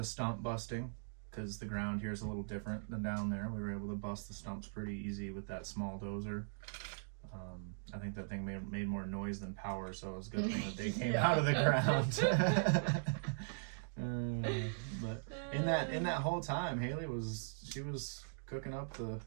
stump busting, because the ground here is a little different than down there. We were able to bust the stumps pretty easy with that small dozer. I think that thing made more noise than power, so it was a good thing that they came out of the ground. But in that whole time, Haley was cooking up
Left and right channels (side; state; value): left; silent; digital silence